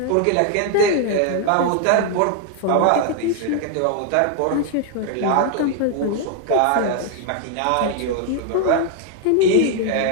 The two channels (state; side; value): different; both; correlation 0.00